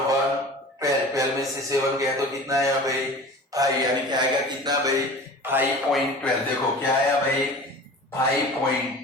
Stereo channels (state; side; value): normal; both; correlation 0.39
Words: 12 में से 7 गया तो कितना आया भाई 5, यानी क्या आएगा कितना भाई 5.12। देखो क्या आया भाई